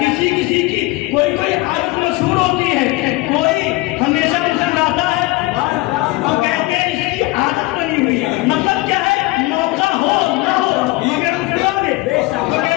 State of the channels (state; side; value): quieter; right; 20.6 dB